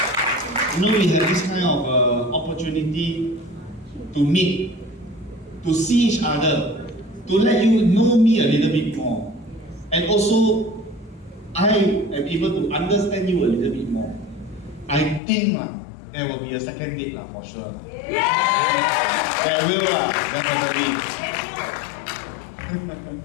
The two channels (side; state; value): right; drops out; at 15.2 s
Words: we have this kind of opportunity to meet, to see each other, to let you know me a little bit more. And also, I am able to understand you a little bit more. I think there will be a second date for sure. There will, definitely.